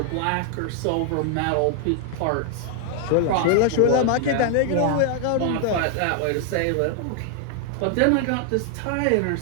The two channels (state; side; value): different; both; correlation 0.00